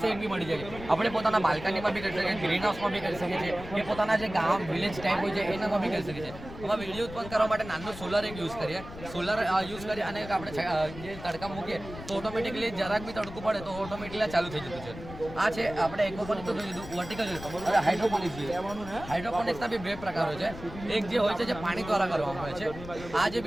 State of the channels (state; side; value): noise; left; rumble, 13 dB below the sound